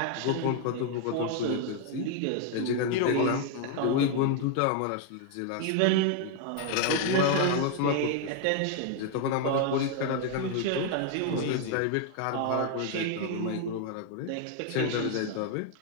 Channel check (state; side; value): different; both; correlation 0.00